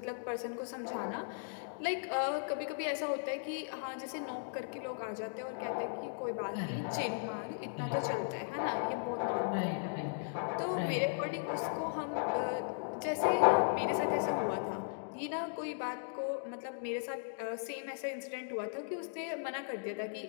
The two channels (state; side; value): silent; right; digital silence